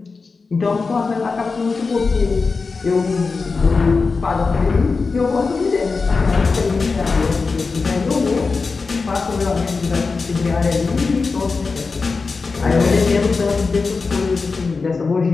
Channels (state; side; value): quieter; right; 4.4 dB